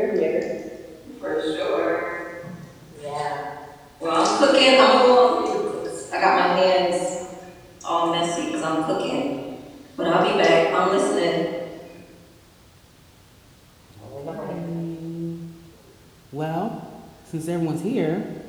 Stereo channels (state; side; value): identical; both; correlation 1.00